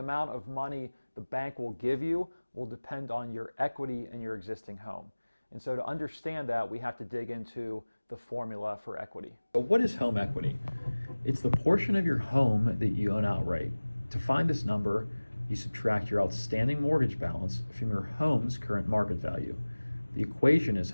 amount of money the bank will give you will depend on your equity in your existing home. And so to understand that, we have to dig into the formula for equity. So what is home equity? It's the portion of your home that you own outright. To find this number, you subtract your outstanding mortgage balance from your home's current market value. The equation is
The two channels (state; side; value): inverted; both; correlation -1.00